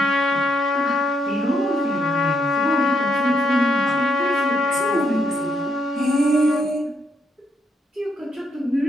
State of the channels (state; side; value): normal; both; correlation 0.77